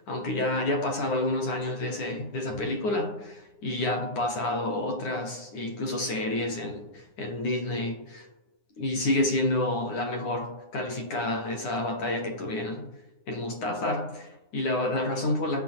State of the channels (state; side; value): late; right; 9.8 ms